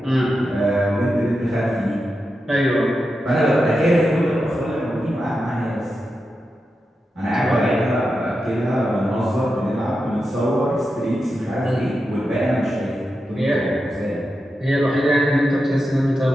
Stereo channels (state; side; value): normal; both; correlation 0.89